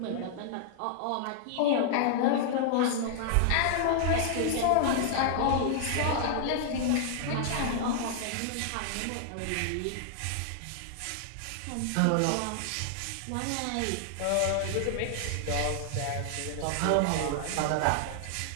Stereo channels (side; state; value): both; different; correlation -0.01